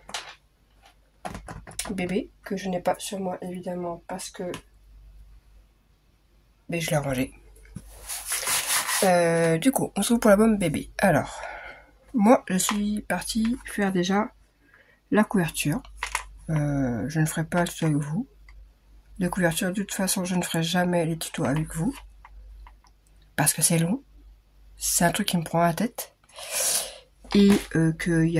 bébé, que je n'ai pas sur moi évidemment parce que je l'ai rangé. Du coup, on se retrouve pour l'album bébé. Alors, moi je suis partie faire déjà la couverture. Je ne ferai pas le tuto avec vous. De couverture, de toute façon, je ne ferai jamais les tutos avec vous. Parce que c'est long. C'est un truc qui me prend la tête. Et qu'il y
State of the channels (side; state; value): both; identical; correlation 1.00